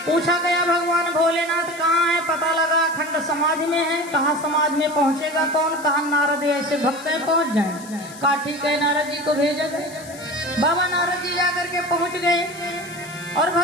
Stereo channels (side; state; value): left; noise; hiss, 17 dB below the sound